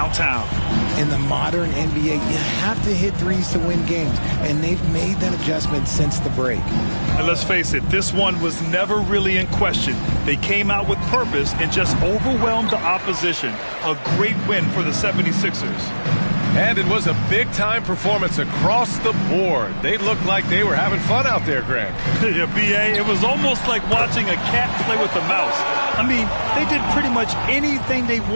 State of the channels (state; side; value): inverted; both; correlation -1.00